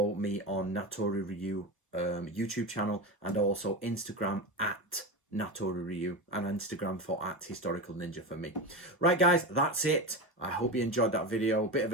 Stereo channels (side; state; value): both; normal; correlation 0.21